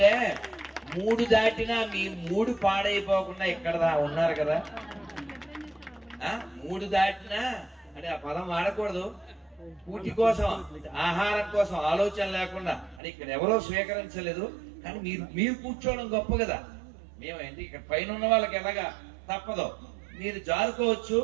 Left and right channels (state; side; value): drops out; left; at 13.0 s